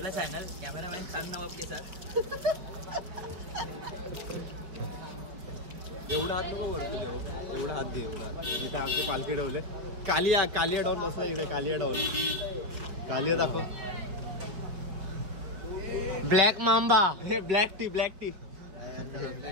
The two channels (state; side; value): late; left; 5.5 ms